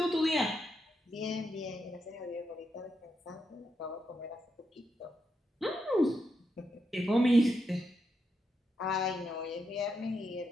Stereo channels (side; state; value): both; normal; correlation 0.83